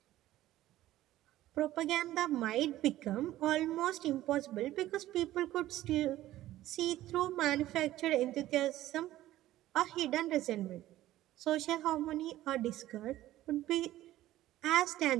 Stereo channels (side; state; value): left; quieter; 14.7 dB